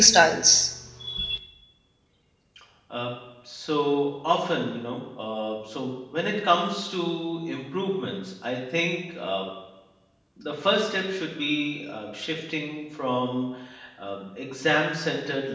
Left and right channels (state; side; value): identical; both; correlation 1.00